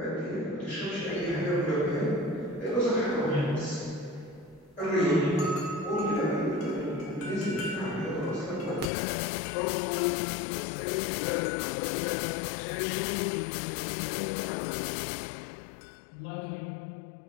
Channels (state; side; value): drops out; right; at 8.9 s